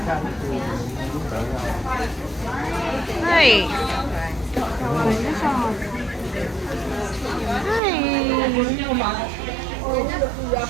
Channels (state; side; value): drops out; left; at 7.8 s